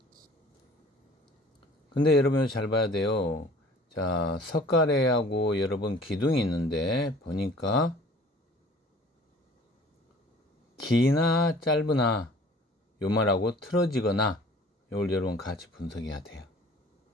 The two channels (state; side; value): normal; both; correlation 0.49